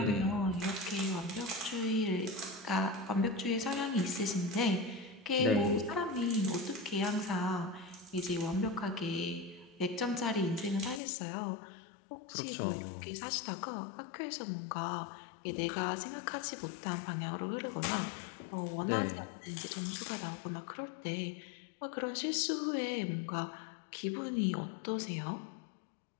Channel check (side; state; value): right; drops out; at 11.0 s